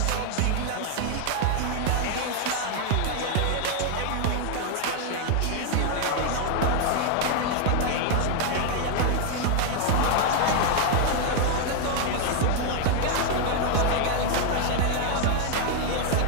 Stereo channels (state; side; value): different; both; correlation 0.00